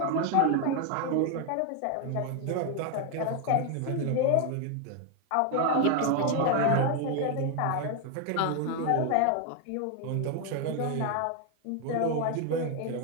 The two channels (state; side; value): different; both; correlation 0.01